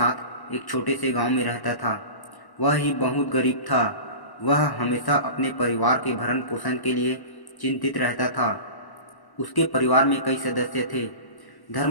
एक छोटे से गांव में रहता था। वह ही बहुत गरीब था। वह हमेशा अपने परिवार के भरण पोषण के लिए चिंतित रहता था। उसके परिवार में कई सदस्य थे।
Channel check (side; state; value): right; late; 1.1 ms